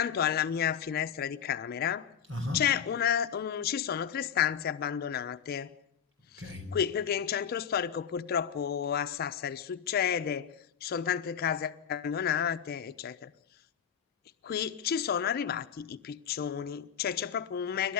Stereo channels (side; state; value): right; quieter; 8.2 dB